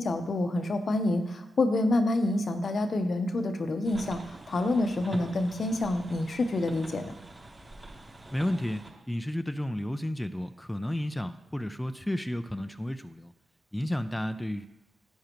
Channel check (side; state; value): both; normal; correlation 0.90